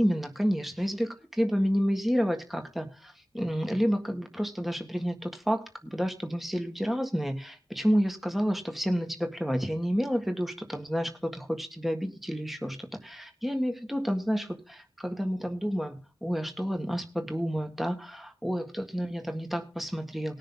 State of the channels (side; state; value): both; normal; correlation 0.98